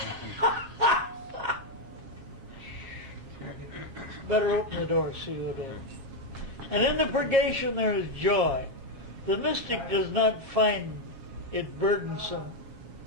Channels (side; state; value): left; late; 7.3 ms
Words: Better open the door, see what it is. And in the purgation there is joy. The mystic does not find it burdensome,